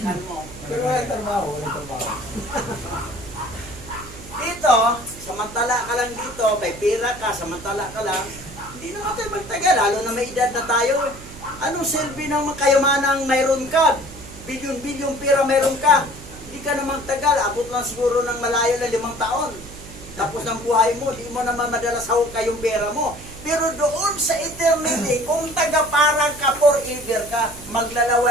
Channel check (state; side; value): noise; right; hum, 16 dB below the sound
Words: mo. Pero walang trabaho, walang trabaho. Dito, samantala ka lang dito, may pira ka, samantala ka lang, hindi naman tayo magtagal, lalo na may edad na tayo. Anong silbi ng kayamanang mayroon ka? Bilyon-bilyon pira mayroon ka. Hindi ka naman tagal, abot lang siguro ng malayo na 5 taon. Tapos ng buhay mo, di mo naman madalas hawak kayong pera mo. Pero doon sa eternity, kung taga-parang ka forever ka,